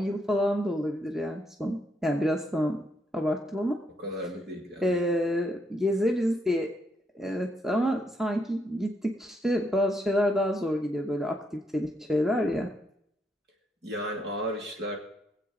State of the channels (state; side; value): normal; both; correlation 0.76